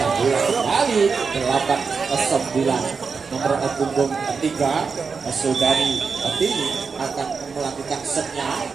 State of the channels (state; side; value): quieter; left; 5.2 dB